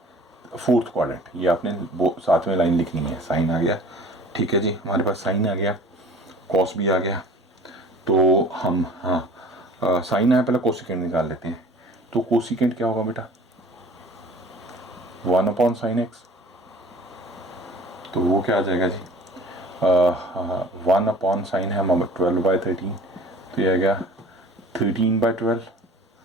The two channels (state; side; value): normal; both; correlation 0.47